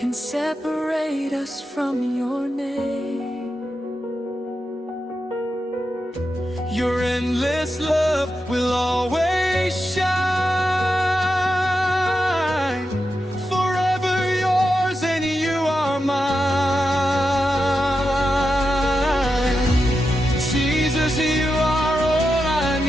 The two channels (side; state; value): both; normal; correlation 0.88